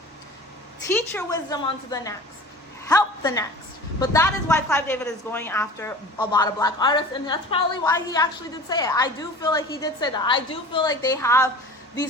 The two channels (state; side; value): normal; both; correlation 0.39